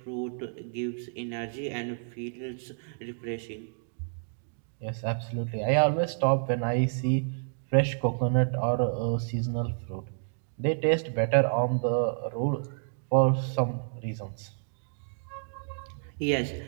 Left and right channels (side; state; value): left; silent; digital silence